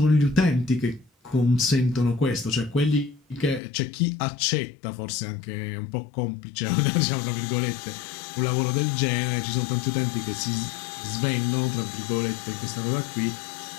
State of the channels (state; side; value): drops out; right; at 3.6 s